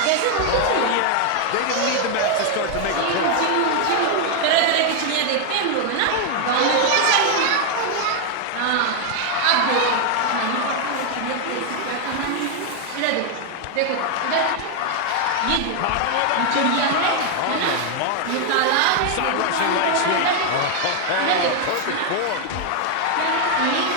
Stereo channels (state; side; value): different; both; correlation 0.00